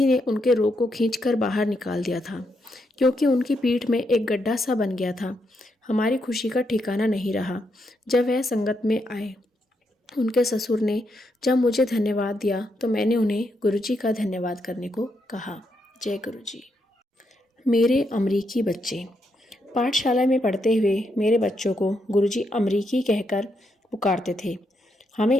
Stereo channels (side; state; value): both; normal; correlation 0.80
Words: ने उनके रोग को खींचकर बाहर निकाल दिया था, क्योंकि उनकी पीठ में एक गड्ढा सा बन गया था। हमारी खुशी का ठिकाना नहीं रहा जब वह संगत में आए। उनके ससुर ने जब मुझे धन्यवाद दिया तो मैंने उन्हें गुरुजी का धन्यवाद करने को कहा। जय गुरुजी। मेरे अमरीकी बच्चे। पाठशाला में पढ़ते हुए मेरे बच्चों को गुरुजी अमरीकी कहकर पुकारते थे।